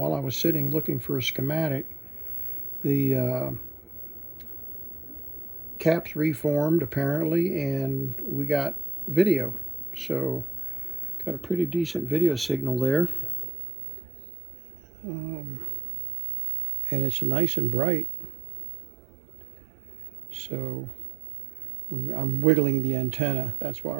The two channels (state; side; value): drops out; left; at 13.5 s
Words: I was sitting looking for a schematic, the caps reformed apparently, and we got video. So got a pretty decent video signal there. And it's nice and bright. So I'm wiggling the antenna. That's why